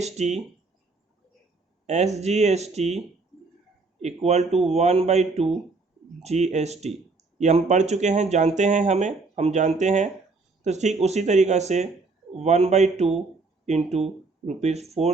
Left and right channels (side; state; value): left; quieter; 3.8 dB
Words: SGST equal to 1/2 GST, ये हम पढ़ चुके हैं, जानते हैं, हम जानते हैं। तो ठीक उसी तरीक़ा से 1/2 इंटू